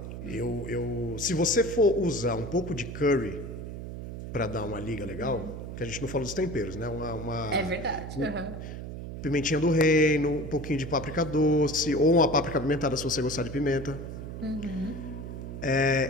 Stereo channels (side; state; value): right; noise; hum, 8 dB below the sound